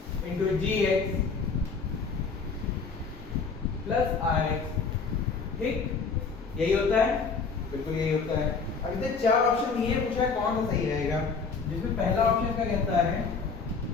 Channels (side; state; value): right; quieter; 5.0 dB